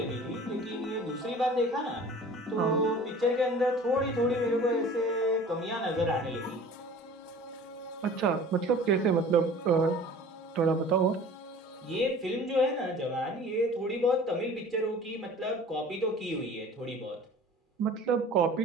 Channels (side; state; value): both; normal; correlation 0.44